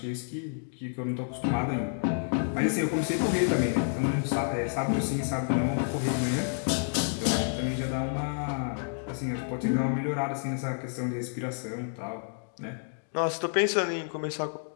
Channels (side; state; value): right; silent; digital silence